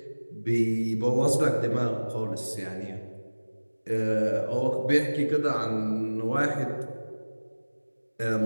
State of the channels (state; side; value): inverted; both; correlation -1.00